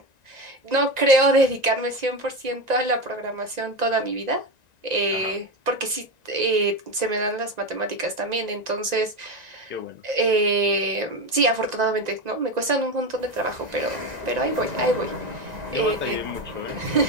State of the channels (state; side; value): late; left; 1.9 ms